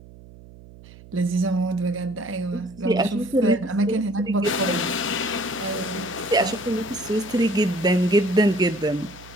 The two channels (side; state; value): right; noise; hum, 20 dB below the sound